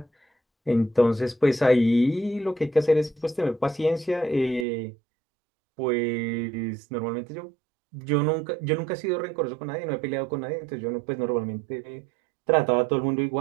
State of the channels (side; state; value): left; drops out; at 4.7 s